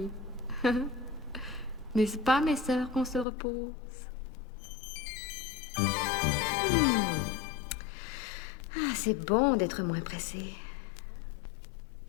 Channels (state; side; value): drops out; right; at 3.2 s